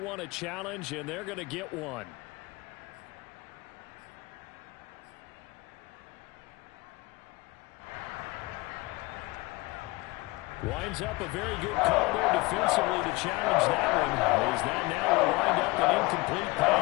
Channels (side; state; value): right; quieter; 23.6 dB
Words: a challenge, and they're going to get one. Winds up a very good call there defensively to challenge that one. As that now will wind up an incomplete